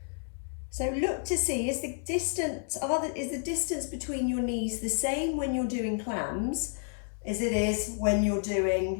So look to see, is the distance between your knees the same when you're doing clams as it is when you're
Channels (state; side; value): silent; right; 58 dB below the other